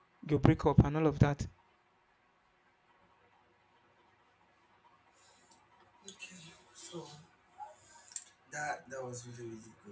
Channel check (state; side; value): identical; both; correlation 1.00